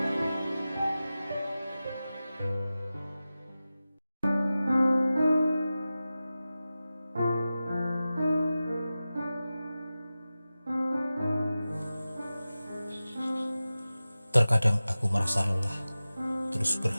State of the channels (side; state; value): both; inverted; correlation -0.95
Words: Terkadang aku merasa lelah, terus